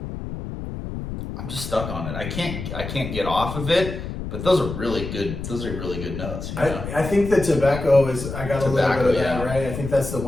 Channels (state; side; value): noise; left; rumble, 7 dB below the sound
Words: I'm just stuck on it. I can't get off of it, but those are really good notes. You know? I think the tobacco is, I got a little bit of that, right? I think that's the